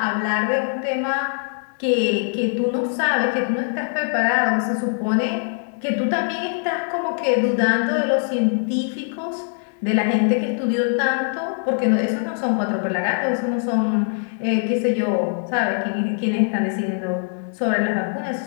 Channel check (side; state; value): right; silent; 62 dB below the other